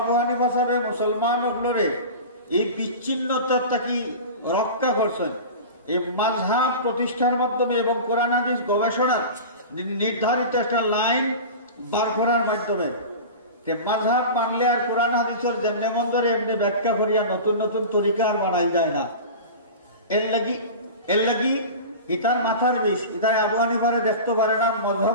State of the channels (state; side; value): inverted; both; correlation -0.31